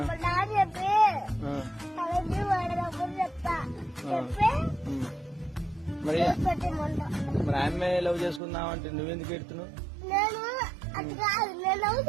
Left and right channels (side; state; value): left; drops out; at 8.4 s